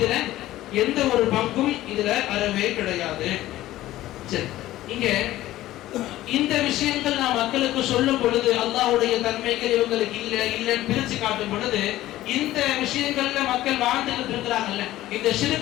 எந்த ஒரு பங்கும் இதுல அறவே கிடையாது. சரி, இங்க இந்த விஷயங்கள் நான் மக்களுக்கு சொல்லும் பொழுது அல்லாஹ்வுடைய தன்மைகள் இவங்களுக்கு இல்லைன்னு பிரிச்சு காட்டும் பொழுது இந்த விஷயங்கள்ல மக்கள் வாழ்ந்துட்டு இருக்கிறாங்கல்ல, இந்த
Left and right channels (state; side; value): quieter; right; 15.2 dB